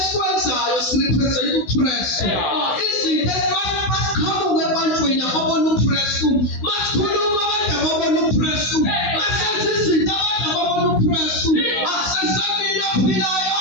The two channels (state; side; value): late; right; 16 ms